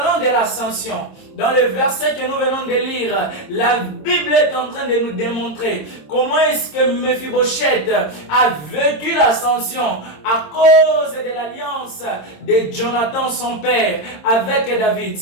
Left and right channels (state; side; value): late; right; 26 ms